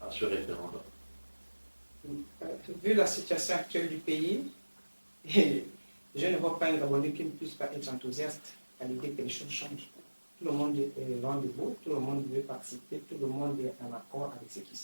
à ce référendum? Vu la situation actuelle du pays, je ne vois pas un Gabonais qui ne puisse pas être enthousiaste à l'idée que les choses changent. Tout le monde est rendez-vous, tout le monde veut participer, tout le monde est en accord avec ce qui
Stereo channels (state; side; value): inverted; both; correlation -1.00